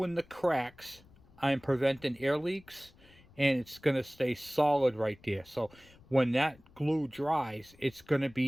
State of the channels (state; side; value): noise; left; rumble, 26 dB below the sound